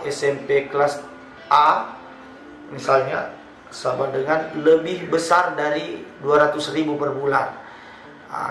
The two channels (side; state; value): both; identical; correlation 1.00